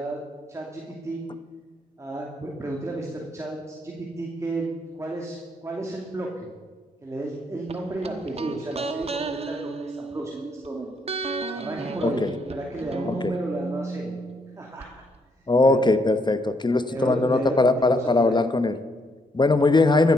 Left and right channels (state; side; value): normal; both; correlation 0.73